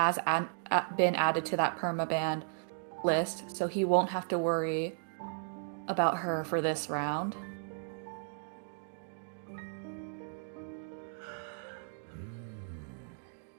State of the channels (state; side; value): silent; left; digital silence